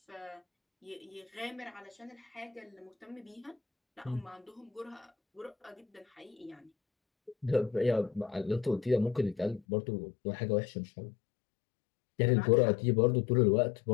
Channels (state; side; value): drops out; right; at 9.6 s